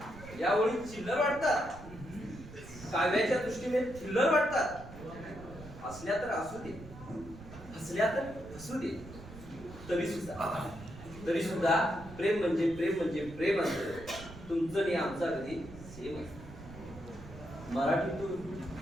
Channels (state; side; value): noise; right; rumble, 15 dB below the sound